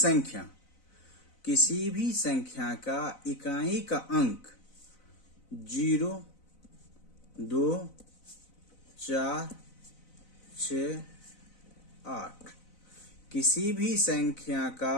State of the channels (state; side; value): late; right; 4.0 ms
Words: संख्या का इकाई का अंक 0, 2, 4, 6, 8, किसी भी संख्या